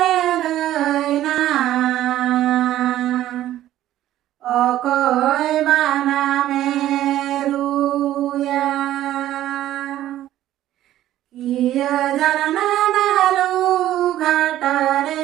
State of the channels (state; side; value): quieter; left; 13.3 dB